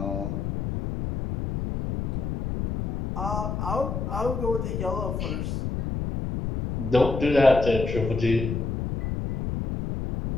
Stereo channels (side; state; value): left; noise; rumble, 3 dB below the sound